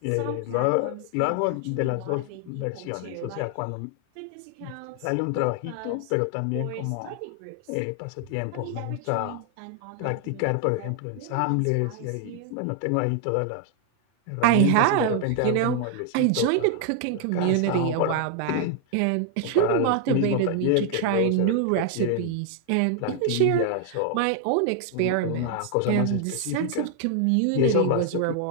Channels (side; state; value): both; different; correlation 0.00